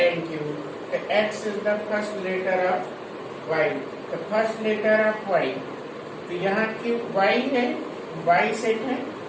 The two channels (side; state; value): both; identical; correlation 1.00